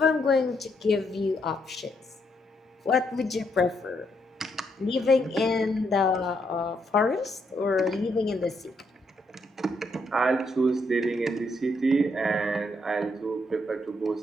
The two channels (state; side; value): normal; both; correlation 0.76